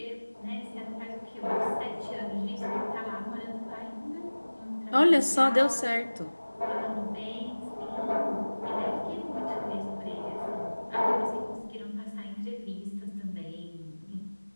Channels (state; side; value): inverted; both; correlation -1.00